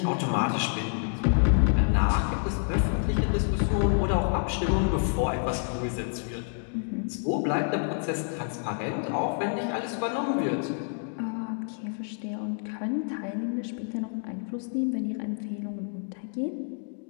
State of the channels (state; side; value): silent; right; 59 dB below the other